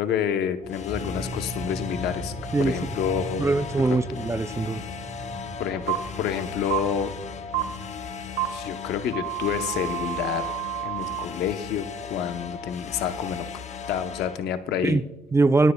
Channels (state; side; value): normal; both; correlation 0.54